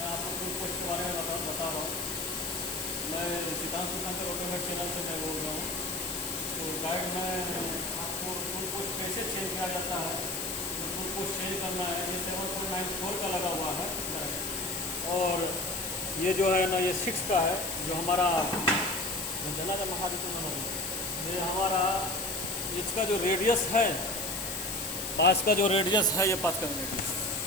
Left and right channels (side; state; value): left; noise; hiss, 4 dB below the sound